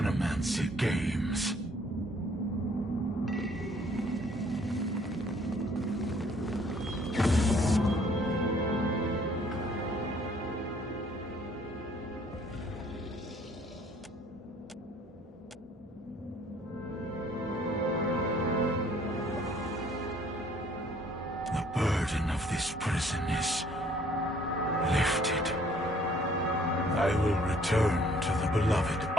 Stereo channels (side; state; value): both; normal; correlation 0.60